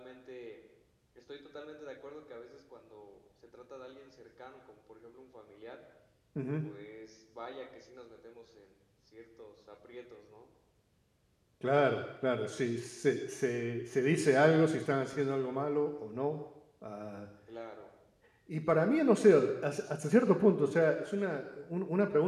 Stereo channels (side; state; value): both; identical; correlation 1.00